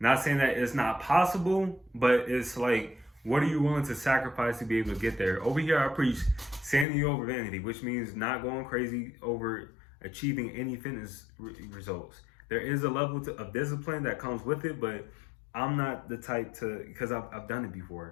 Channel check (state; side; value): drops out; right; at 6.9 s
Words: saying that it's not possible, but it's like, what are you willing to sacrifice to be able to get there? Over here, I preach sanity over vanity, which means not going crazy over achieving any fitness results. There is a level of discipline that comes with it, but I'm not the type to, because I've done it